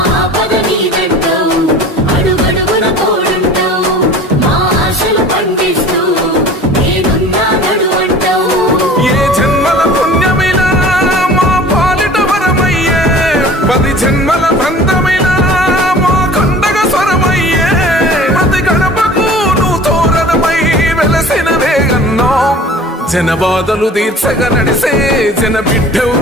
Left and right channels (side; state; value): both; normal; correlation 0.44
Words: ఏ జన్మల పుణ్యమైనా మా పాలిట వరమయ్యే, 10 జన్మల బంధమైనా మా కండగ స్వరమయ్యే. ప్రతి గడపకు నువ్వు తోరణమై వెలసిన వేగన్నా, జన బాధలు తీర్చగా నడిసే జన బిడ్డవు